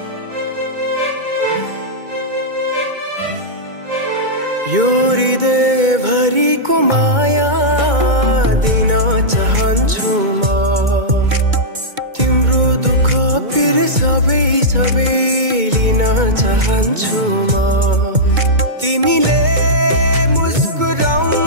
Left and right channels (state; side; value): late; left; 2.2 ms